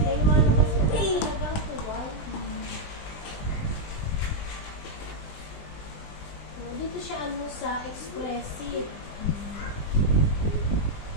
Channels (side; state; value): right; late; 20 ms